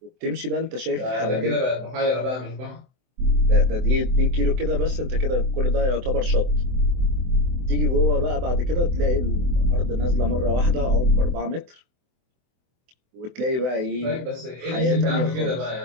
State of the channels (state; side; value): late; left; 24 ms